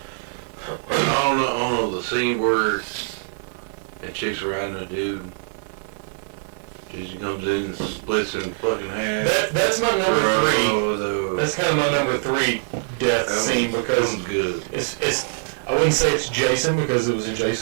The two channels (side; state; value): left; silent; digital silence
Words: I don't know the scene where that chick's riding a dude. Jason comes in and splits in fucking half. That's my number three. Oh, That's kind of my number three death scene because good. it's I wouldn't say it's Jason because it was in